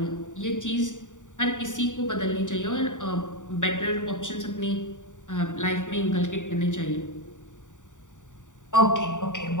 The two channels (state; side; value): late; right; 0.86 ms